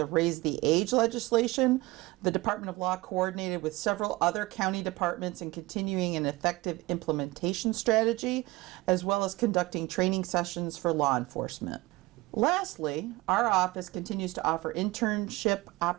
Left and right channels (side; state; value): left; quieter; 21.0 dB